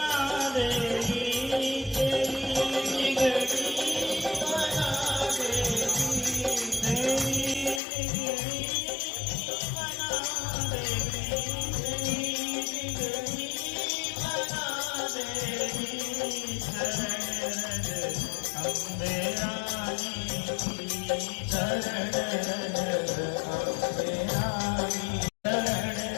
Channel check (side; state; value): right; drops out; at 7.8 s